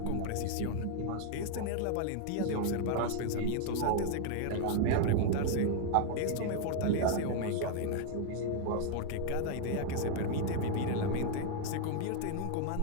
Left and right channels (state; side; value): different; both; correlation 0.00